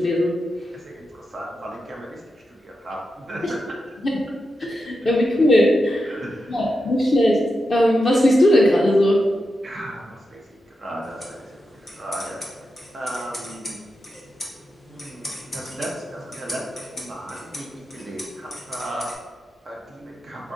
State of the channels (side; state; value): both; normal; correlation 0.88